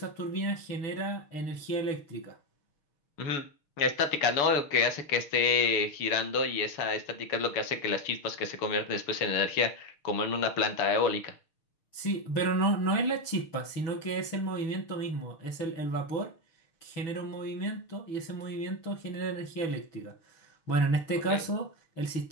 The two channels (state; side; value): late; right; 6.5 ms